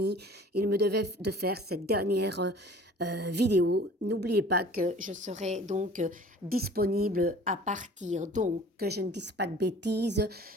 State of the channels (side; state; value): both; normal; correlation 0.46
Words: il me devait de faire cette dernière vidéo. N'oubliez pas que je serai donc disponible à partir, donc que je ne dise pas de bêtises,